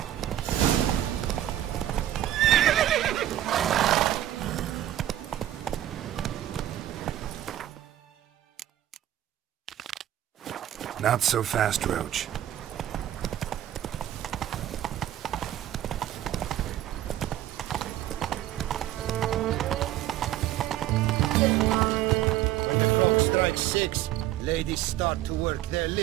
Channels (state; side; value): quieter; left; 12.8 dB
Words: Not so fast, Roach. When the clock strikes 6, ladies start to work their